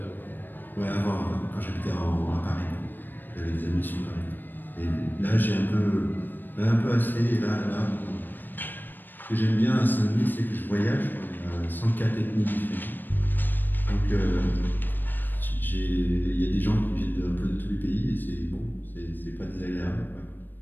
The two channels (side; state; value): right; late; 0.092 ms